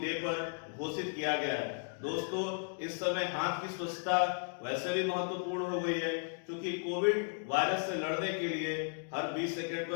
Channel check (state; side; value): silent; right; 54 dB below the other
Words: डे पर घोषित किया गया है। दोस्तों, इस समय हाथ की स्वच्छता वैसे भी महत्वपूर्ण हो गई है, क्योंकि कोविड वायरस से लड़ने के लिए हर 20 सेकंड